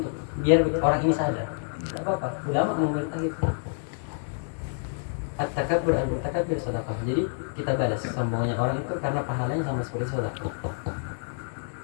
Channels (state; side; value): silent; right; digital silence